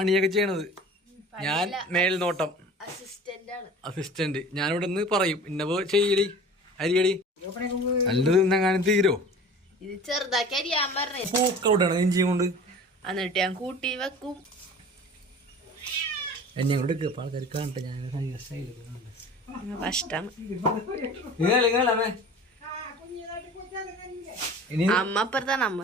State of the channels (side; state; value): both; normal; correlation 0.41